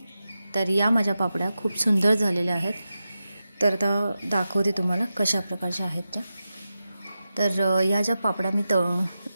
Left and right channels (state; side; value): inverted; both; correlation -0.91